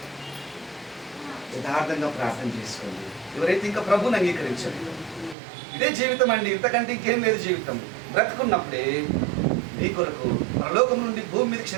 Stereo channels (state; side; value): drops out; left; at 5.4 s